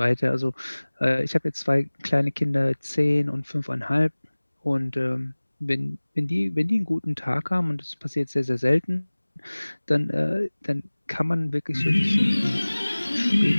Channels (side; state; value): both; inverted; correlation -1.00